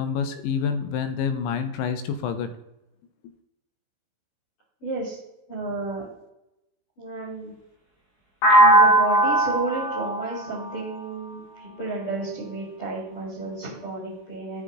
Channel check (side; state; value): right; late; 21 ms